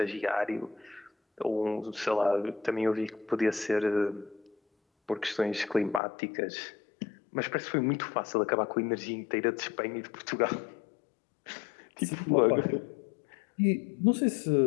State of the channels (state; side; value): drops out; right; at 6.0 s